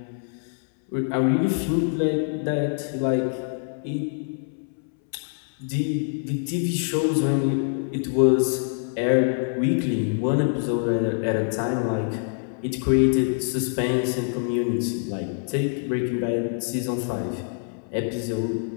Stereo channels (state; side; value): silent; right; 62 dB below the other